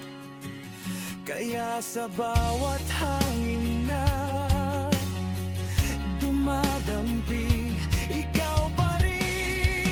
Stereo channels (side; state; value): both; identical; correlation 1.00